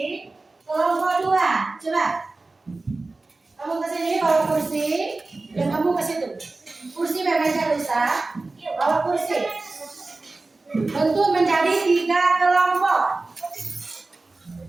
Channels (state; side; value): quieter; left; 3.4 dB